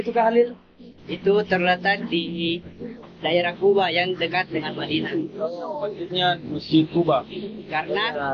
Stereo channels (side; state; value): both; identical; correlation 1.00